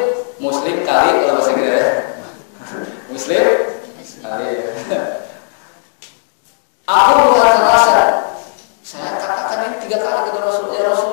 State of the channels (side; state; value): right; silent; digital silence